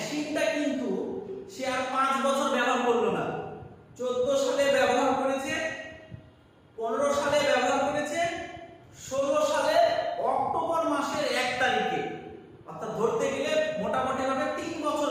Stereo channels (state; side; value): identical; both; correlation 1.00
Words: কিন্তু সে আর 5 বছর ব্যবহার করলো না। 14 সালে ব্যবহার করেছে, 15 সালে ব্যবহার করেছে, 16 সালে অক্টোবর মাসের 1 তারিখে, অর্থাৎ ধরতে গেলে মোটামুটি ভাবে 3 বছর